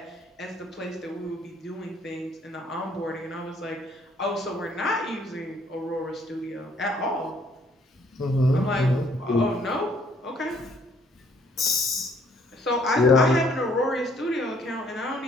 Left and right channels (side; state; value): both; normal; correlation 0.64